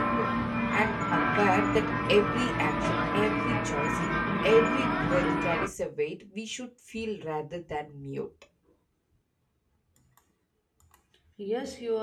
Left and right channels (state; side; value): identical; both; correlation 1.00